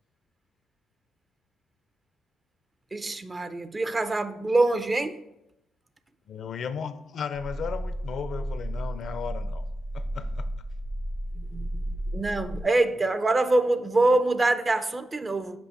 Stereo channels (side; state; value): both; normal; correlation 0.92